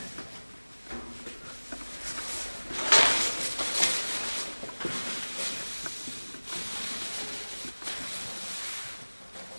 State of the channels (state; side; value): inverted; both; correlation -1.00